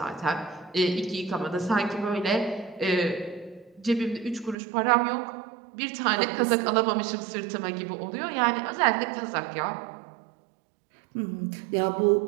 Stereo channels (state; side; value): drops out; left; at 4.5 s